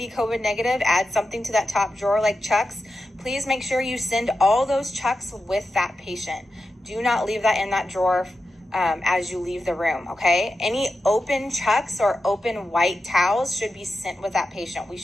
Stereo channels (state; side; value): normal; both; correlation 0.90